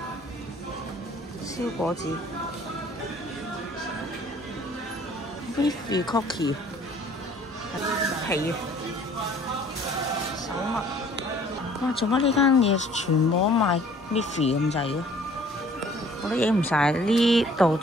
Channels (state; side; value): normal; both; correlation 0.55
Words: 燒果子 Miffy Cookie。皮手襪，哇！做乜呢間嘢全部都賣 Miffy 咁滯嘅？我都影唔晒，呢度